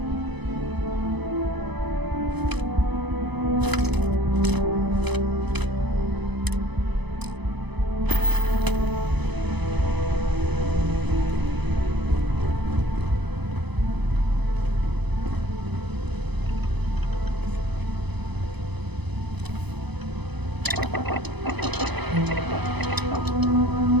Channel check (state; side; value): late; left; 0.99 ms